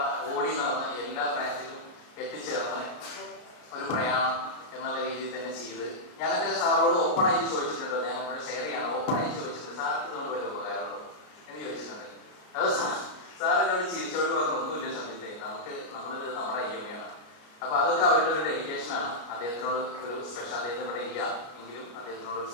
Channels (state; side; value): late; right; 33 ms